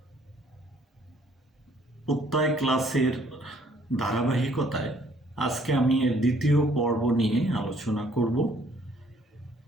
প্রত্যয় ক্লাসের ধারাবাহিকতায় আজকে আমি এর দ্বিতীয় পর্ব নিয়ে আলোচনা করব।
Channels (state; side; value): normal; both; correlation 0.62